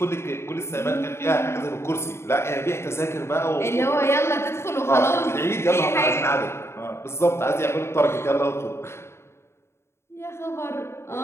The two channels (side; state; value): right; late; 0.13 ms